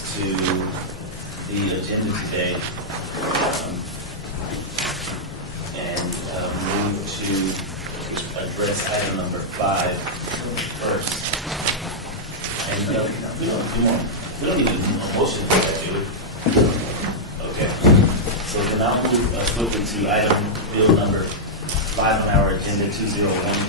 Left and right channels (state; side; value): normal; both; correlation -0.07